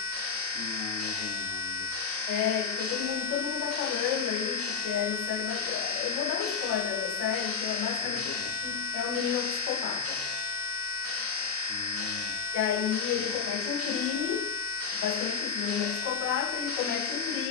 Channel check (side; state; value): right; quieter; 5.8 dB